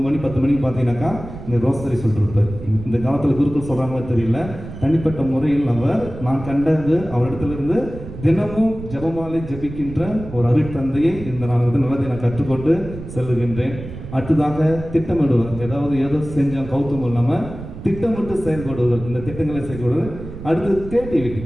மணி 10 மணிக்கு பார்த்தீங்கன்னாக்கா இங்கே ரோசரி சொல்லிருப்பார். இந்த காலத்தில் குருக்கள் சொல்கிறாங்களோ தெரியல, தனிப்பட்ட முறையில் நான் கண்டது அவரிடத்திலிருந்து தினமும் ஜபமாலை ஜபிக்கின்ற ஒரு அருட்தந்தையை இந்த நான் வந்து நல்லதை நான் கற்றுக்கொண்டு செல்லுகின்றேன். அடுத்ததாக திட்டமிடுவர். ஏதோ செஞ்சோம் கௌத்தம் இல்லாமல் திட்டமிட்டு செயல்படுவது, இந்த திட்டங்களை செயல்படுவது. அடுத்து கிரியேட்டிவிட்டி.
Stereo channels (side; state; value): right; noise; rumble, 12 dB below the sound